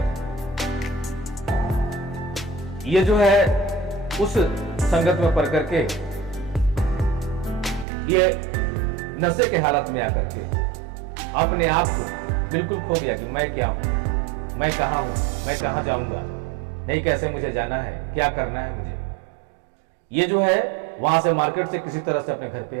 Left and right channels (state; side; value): drops out; left; at 7.9 s